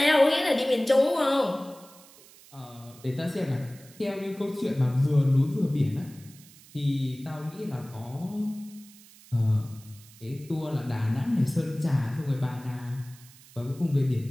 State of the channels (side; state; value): right; noise; hiss, 23 dB below the sound